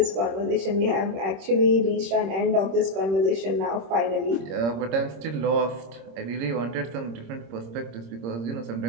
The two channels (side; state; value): left; late; 26 ms